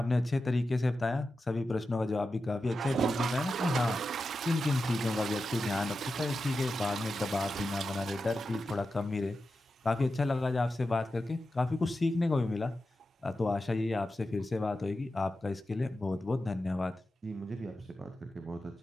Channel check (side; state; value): both; normal; correlation 0.91